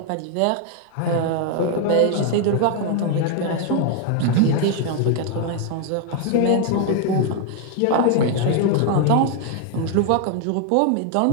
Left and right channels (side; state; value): both; different; correlation 0.00